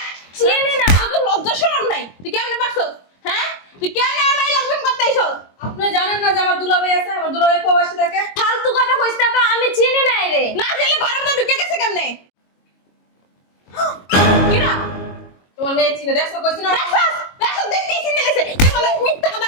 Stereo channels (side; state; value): right; late; 22 ms